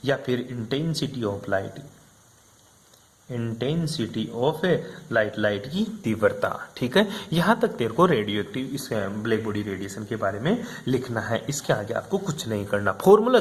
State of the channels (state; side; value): identical; both; correlation 1.00